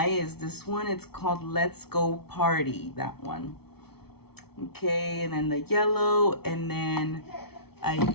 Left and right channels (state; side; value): late; right; 0.96 ms